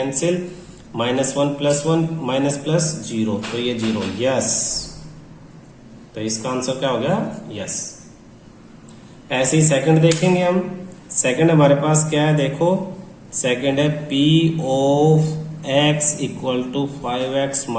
-1 प्लस 1 माइनस प्लस 0, तो ये 0, यस। तो इसका आंसर क्या हो गया? यस। ऐसे ही सेकंड देखेंगे हम। सेकंड हमारे पास क्या है? देखो सेकंड है p of x equal to 5x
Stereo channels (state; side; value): identical; both; correlation 1.00